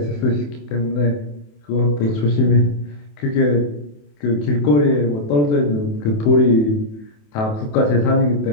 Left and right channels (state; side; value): late; right; 27 ms